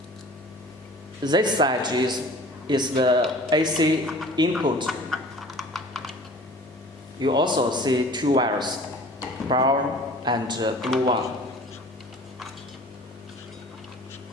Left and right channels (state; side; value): normal; both; correlation 0.46